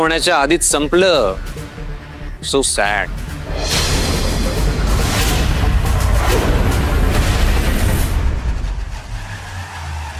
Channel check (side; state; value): both; identical; correlation 1.00